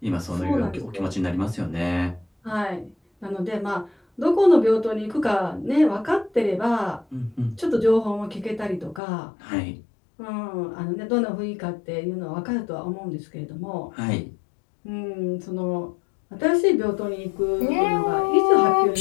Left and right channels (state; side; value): drops out; right; at 9.0 s